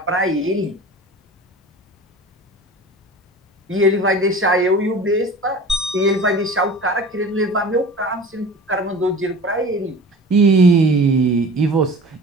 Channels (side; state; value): both; normal; correlation 0.39